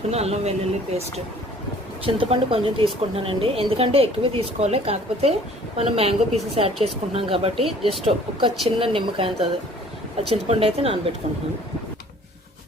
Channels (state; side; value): normal; both; correlation 0.53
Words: అల్లం వెల్లుల్లి పేస్ట్, చింతపండు కొంచెం తీసుకుంటున్నానండి. ఎందుకంటే ఎక్కువ తీసుకోవాలి, కాకపోతే మనం మ్యాంగో పీసెస్ యాడ్ చేసుకుంటున్నాం కాబట్టి జస్ట్ ఒక చిన్న నిమ్మకాయ అంత చింతపండు అయితే నానబెట్టుకుంటున్నాను.